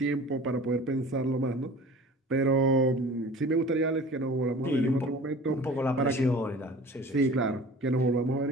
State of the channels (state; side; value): normal; both; correlation 0.42